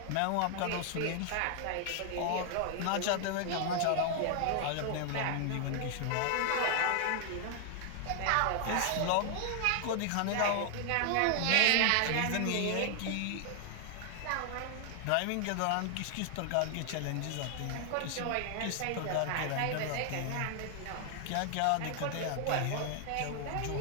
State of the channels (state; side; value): different; both; correlation 0.00